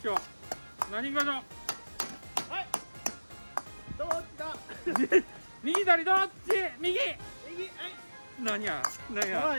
よう。何しましょう。どっちだ。右左どっち？右。右。はい。何や。はい。あ、めっ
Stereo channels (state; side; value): inverted; both; correlation -1.00